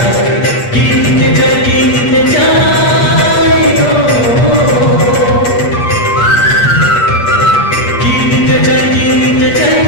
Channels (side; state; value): right; late; 8.4 ms